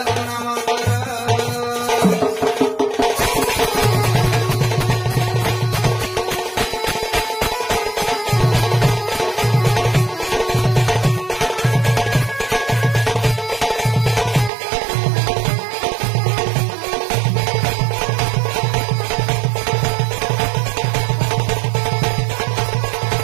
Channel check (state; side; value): drops out; left; at 14.5 s